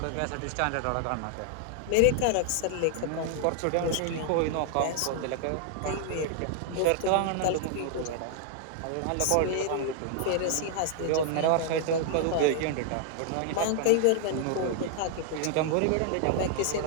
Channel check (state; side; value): different; both; correlation 0.00